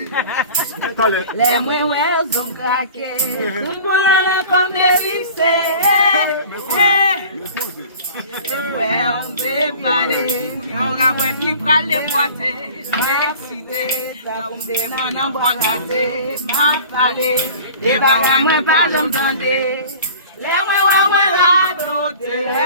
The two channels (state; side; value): inverted; both; correlation -0.43